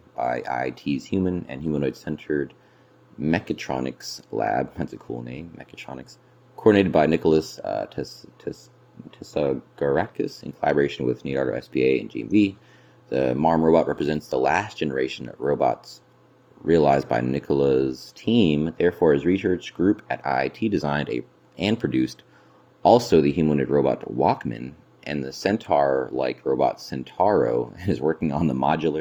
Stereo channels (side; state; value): both; identical; correlation 1.00